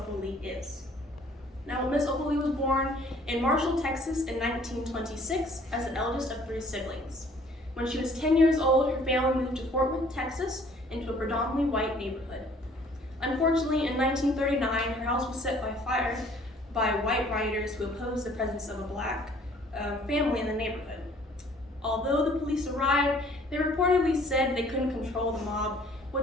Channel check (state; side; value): normal; both; correlation 0.57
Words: Lee is. Now, Miss Opal Lee was born in Marshall, Texas in 1926 as the eldest of 3 siblings. When she was 10 years old, her family moved to Fort Worth, Texas, into a predominantly white neighborhood. Unfortunately, in 1939, her house was set by fire by white rioters who opposed the presence of a black family in the neighborhood. Although the police arrived, they reportedly said they couldn't control the mob,